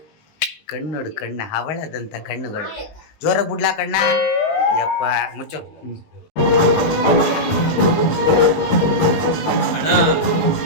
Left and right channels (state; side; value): late; right; 19 ms